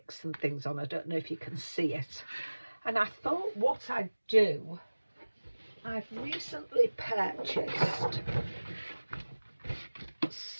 and things on. I don't know if you can see it. And I thought what I'd do, I've recently purchased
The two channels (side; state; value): both; inverted; correlation -1.00